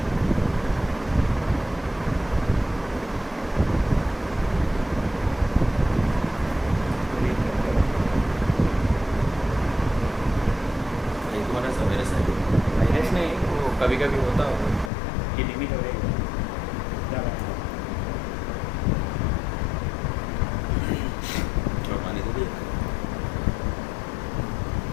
کبھی کبھی ہوتا ہوگا کہ لمٹ ہو رہی ہے پانی تو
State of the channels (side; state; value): right; drops out; at 14.9 s